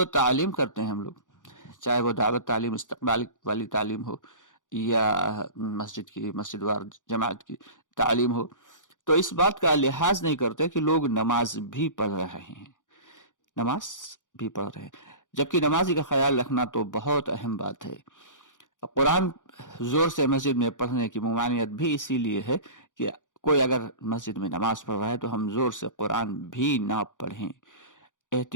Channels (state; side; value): late; right; 0.87 ms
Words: تعلیم کرتے ہیں ہم لوگ، چاہے وہ دعوت تعلیم، استقبال والی تعلیم ہو، یا مسجد وار جماعت کی تعلیم ہو، تو اس بات کا لحاظ نہیں کرتے کہ لوگ نماز بھی پڑھ رہے ہیں، نماز بھی پڑھ رہے ہیں، جبکہ نمازی کا خیال رکھنا تو بہت اہم بات ہے۔ قرآن زور سے مسجد میں پڑھنے کی ممانعت بھی اسی لیے ہے کہ کوئی اگر مسجد میں نماز پڑھ رہا ہے تو ہم زور سے قرآن بھی نہ پڑھیں،